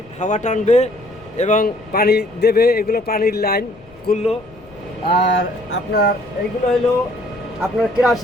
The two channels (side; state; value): left; noise; rumble, 26 dB below the sound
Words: হাওয়া টানবে এবং পানি দেবে। এগুলো পানির লাইন খুললো। আর আপনার এইগুলো হলো আপনার